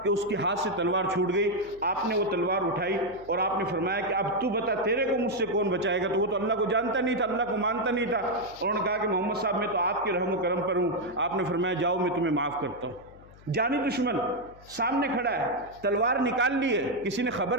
کہ اس کے ہاتھ سے تلوار چھوٹ گئی۔ آپ نے وہ تلوار اٹھائی اور آپ نے فرمایا کہ اب تو بتا تیرے کو مجھ سے کون بچائے گا؟ تو وہ تو اللہ کو جانتا نہیں تھا، اللہ کو مانتا نہیں تھا۔ انہوں نے کہا کہ محمد صاحب میں تو آپ کے رحم و کرم پر ہوں۔ آپ نے فرمایا جاؤ میں تمہیں معاف کرتا ہوں۔ جانی دشمن سامنے کھڑا ہے، تلوار نکال لی ہے، کسی نے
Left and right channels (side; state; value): left; noise; hum, 23 dB below the sound